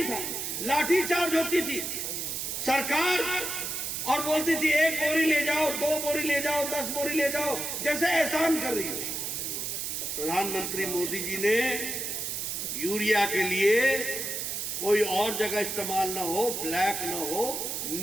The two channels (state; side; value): noise; right; hiss, 3 dB below the sound